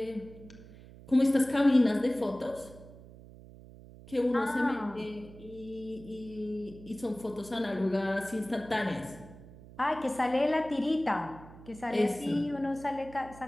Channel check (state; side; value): noise; right; hum, 19 dB below the sound